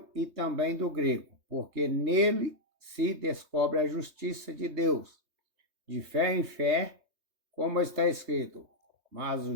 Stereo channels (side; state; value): left; late; 3.2 ms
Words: e também do grego, porque nele se descobre a justiça de Deus, de fé em fé, como está escrito, mas o